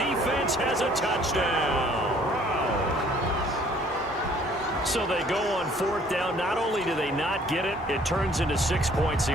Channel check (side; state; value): both; normal; correlation 0.58